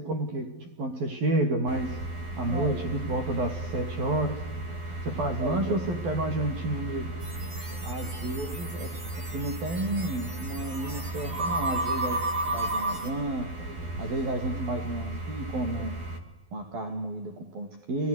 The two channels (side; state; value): left; late; 12 ms